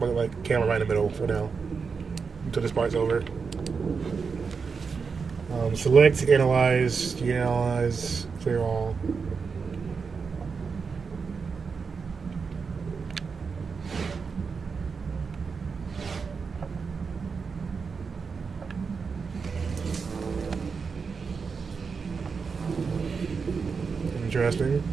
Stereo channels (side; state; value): left; quieter; 5.3 dB